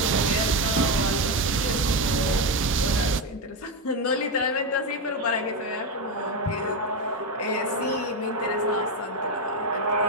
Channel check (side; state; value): both; normal; correlation 0.10